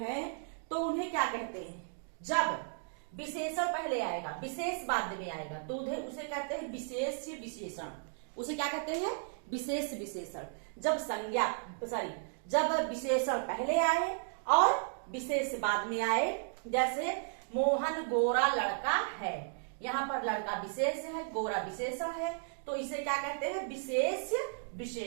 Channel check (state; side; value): silent; left; digital silence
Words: तो उन्हें क्या कहते हैं? जब विशेषण पहले आएगा, विशेष बाद में आएगा, तो उसे कहते हैं विशेष विशेषण। उसे क्या कहते हैं? विशेष विशेषण। जब विशेषण पहले आए और विशेष बाद में आए। जैसे मोहन गोरा लड़का है, यहाँ पर लड़का विशेष है, गोरा विशेषण है, तो इसे क्या कहते हैं? विशेष